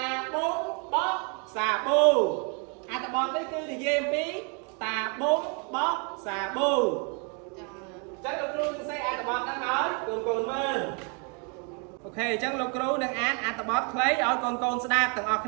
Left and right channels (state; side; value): quieter; left; 36.2 dB